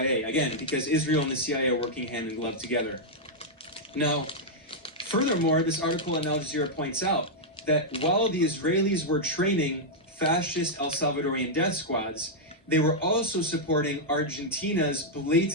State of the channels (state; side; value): normal; both; correlation -0.05